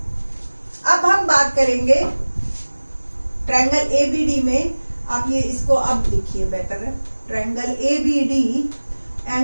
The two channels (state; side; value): inverted; both; correlation -1.00